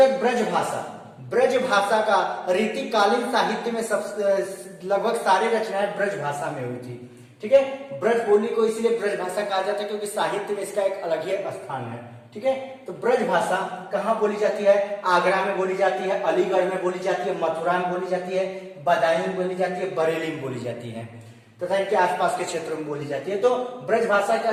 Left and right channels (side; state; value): both; identical; correlation 1.00